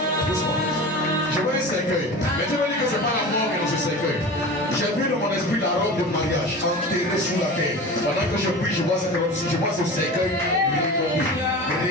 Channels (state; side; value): normal; both; correlation 0.33